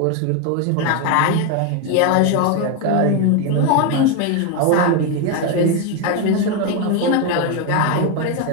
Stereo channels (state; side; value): different; both; correlation 0.02